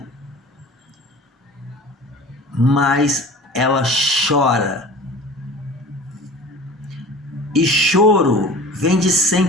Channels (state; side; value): normal; both; correlation 0.40